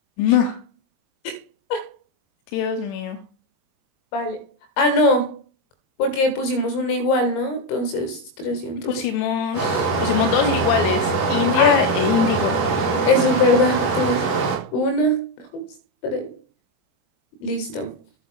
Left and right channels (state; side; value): late; right; 22 ms